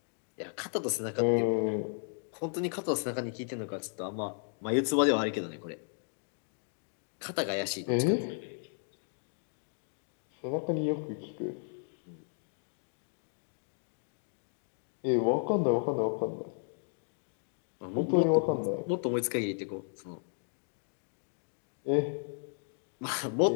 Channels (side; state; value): right; silent; 55 dB below the other